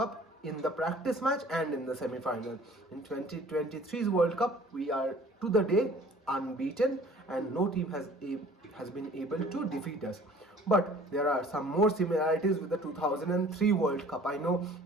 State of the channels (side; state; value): both; normal; correlation 0.50